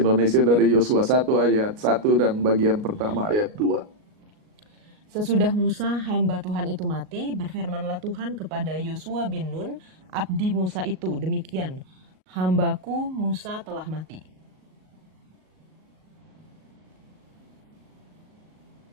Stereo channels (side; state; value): left; late; 38 ms